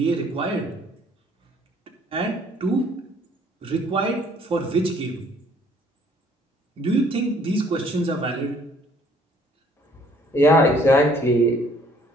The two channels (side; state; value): both; normal; correlation 0.60